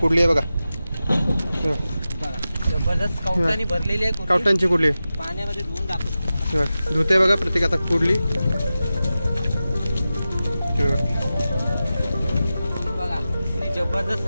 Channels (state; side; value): inverted; both; correlation -0.93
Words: आहे बघा. जबरदस्त कवटांनी भरलेली आहे. कवटांची कुर्ली पाण्यामध्ये धुवून दाखवतो. धुते बघा प्रत्येक आता कुर्ली. बघा जबरदस्त